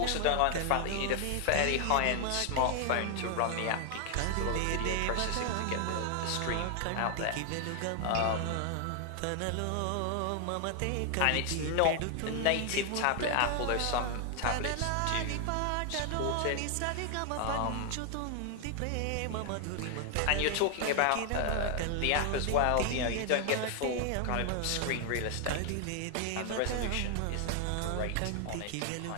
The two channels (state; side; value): different; both; correlation 0.00